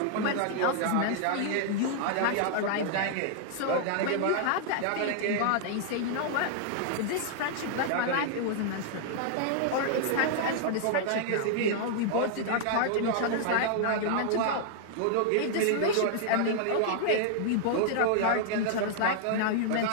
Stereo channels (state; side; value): different; both; correlation -0.01